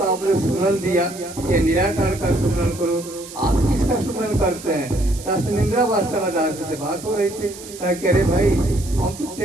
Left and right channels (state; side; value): noise; right; hiss, 15 dB below the sound